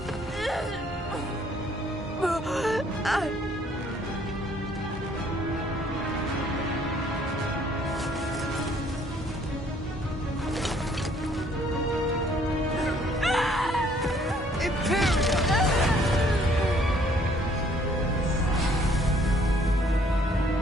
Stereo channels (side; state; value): both; normal; correlation 0.62